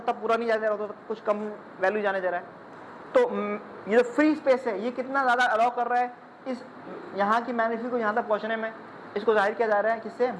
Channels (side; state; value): both; identical; correlation 1.00